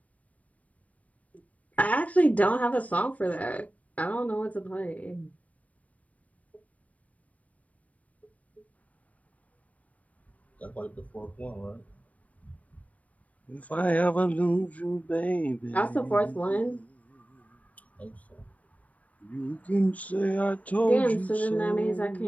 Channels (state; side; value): late; right; 0.069 ms